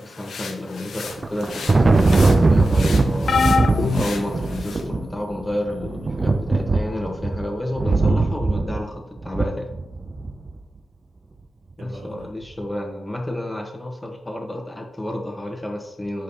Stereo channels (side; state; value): both; normal; correlation 0.93